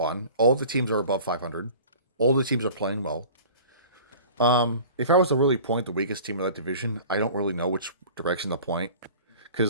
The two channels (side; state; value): both; inverted; correlation -0.43